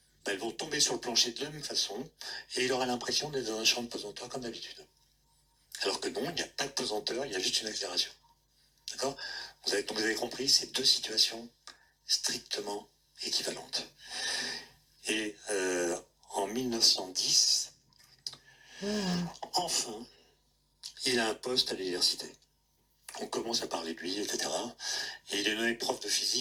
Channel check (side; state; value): both; identical; correlation 1.00